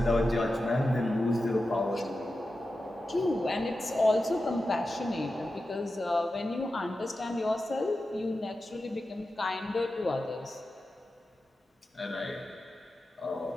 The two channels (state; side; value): normal; both; correlation 0.92